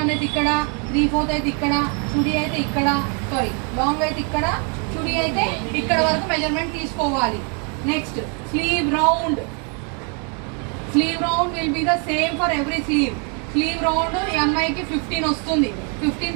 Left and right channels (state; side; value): quieter; left; 38.1 dB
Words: అయితే ఇక్కడ, 3/4 అయితే ఇక్కడ, చుడీ అయితే ఇక్కడ, లాంగ్ అయితే ఇక్కడ, చుడీ అయితే ఇక్కడ వరకు మెజర్మెంట్ తీసుకోవాలి. Next sleeve round. Sleeve round will be the same for every sleeve. Sleeve round ఈ అమ్మాయికి 15 వస్తుంది.